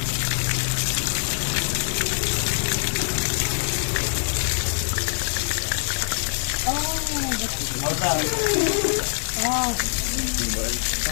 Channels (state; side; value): silent; right; 63 dB below the other